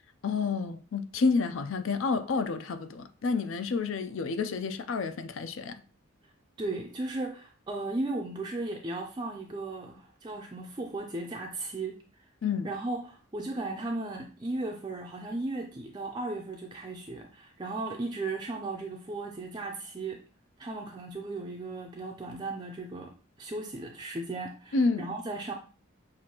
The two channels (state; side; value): normal; both; correlation 0.50